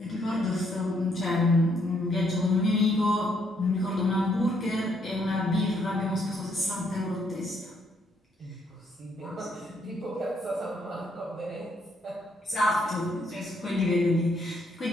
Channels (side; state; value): both; normal; correlation 0.72